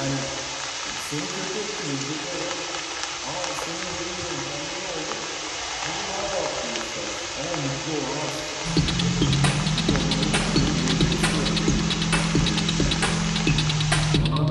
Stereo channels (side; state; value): both; identical; correlation 1.00